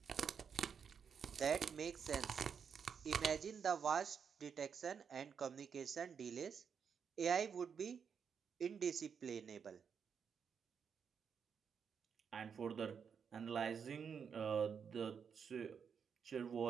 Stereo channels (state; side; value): quieter; left; 6.8 dB